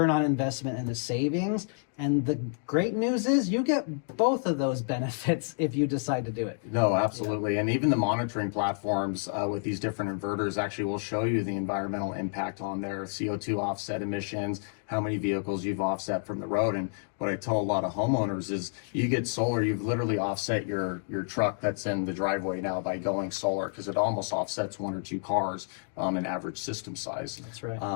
on investment and the savings. And the great news is you get both of those benefits if you decide to do it. No, absolutely. And even the monitoring platforms with these different inverters actually will show you the environmental impact on their CO2 offset emissions, how many vehicles you've offset from the road. And what I tell a lot of homeowners is you get solar, you've literally offset your truck that's in the driveway now by going solar, because it almost offsets 1 or 2 cars an average system size. That's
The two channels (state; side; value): silent; right; digital silence